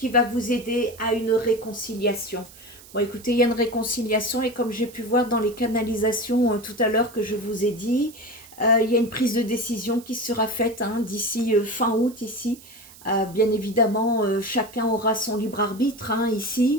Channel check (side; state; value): right; noise; hiss, 21 dB below the sound